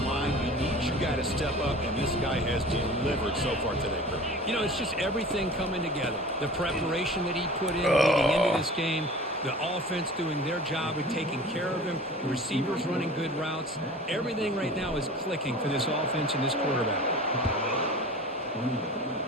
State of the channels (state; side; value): normal; both; correlation 0.40